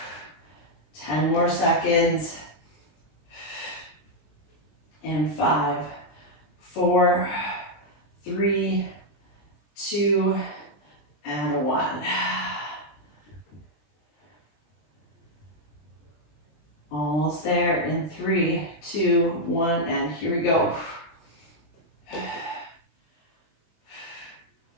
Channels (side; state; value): right; late; 20 ms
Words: 10 more seconds. And 5, 4, 3, 2, and 1. Almost there in 3, 2, 1, and here we go.